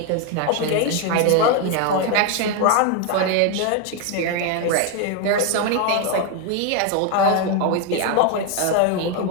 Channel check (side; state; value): both; different; correlation 0.01